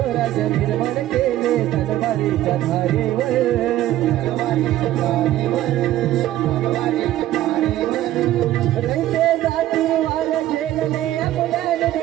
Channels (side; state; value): left; quieter; 13.9 dB